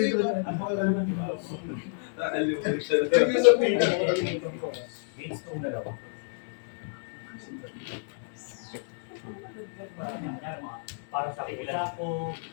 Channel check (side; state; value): right; silent; 58 dB below the other